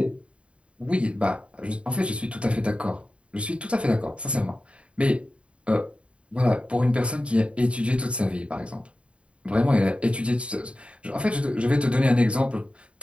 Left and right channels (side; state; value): left; late; 0.060 ms